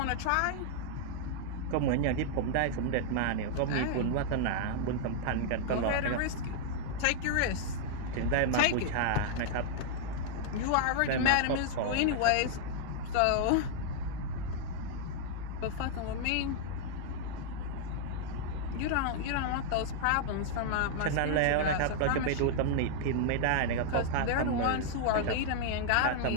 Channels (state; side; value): different; both; correlation -0.01